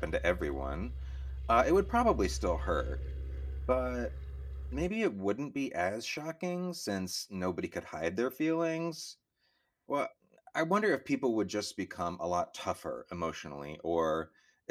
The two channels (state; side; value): identical; both; correlation 1.00